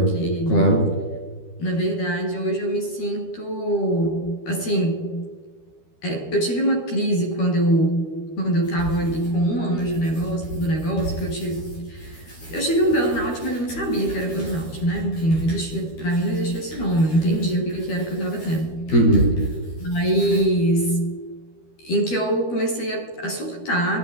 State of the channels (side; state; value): right; late; 13 ms